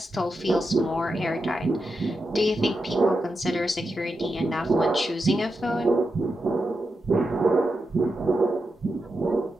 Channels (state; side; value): normal; both; correlation 0.88